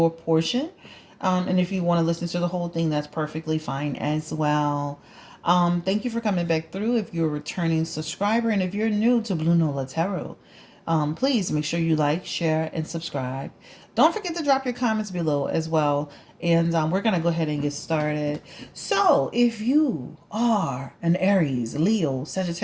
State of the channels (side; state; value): both; identical; correlation 1.00